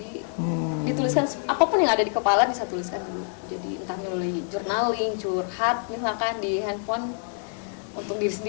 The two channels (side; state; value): right; silent; 59 dB below the other